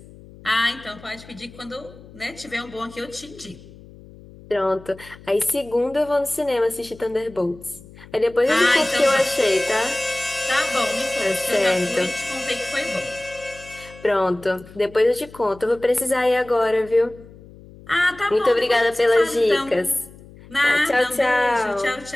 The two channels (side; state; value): left; noise; hum, 20 dB below the sound